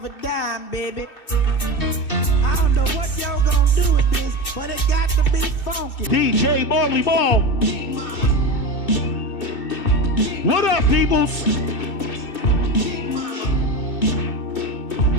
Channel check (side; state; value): right; late; 2.6 ms